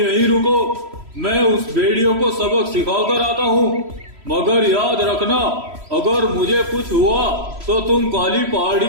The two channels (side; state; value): left; late; 3.1 ms